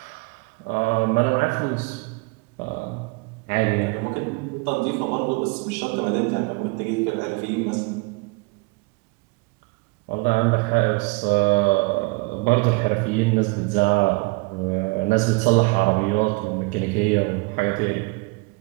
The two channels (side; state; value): left; quieter; 26.9 dB